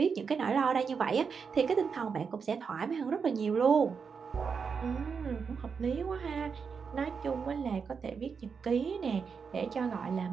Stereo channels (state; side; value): quieter; left; 5.9 dB